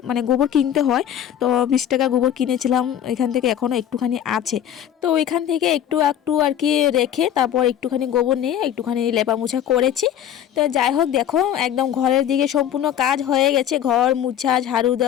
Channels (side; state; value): right; quieter; 10.3 dB